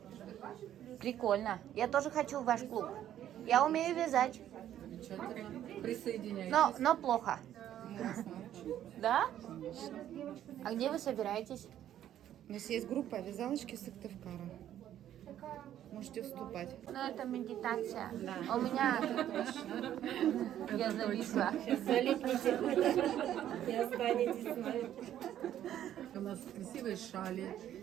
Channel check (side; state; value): left; quieter; 11.3 dB